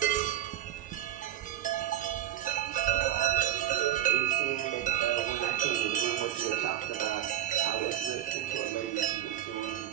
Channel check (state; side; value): quieter; left; 12.5 dB